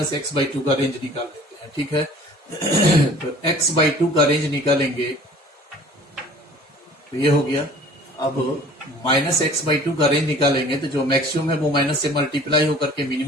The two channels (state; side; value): normal; both; correlation 0.48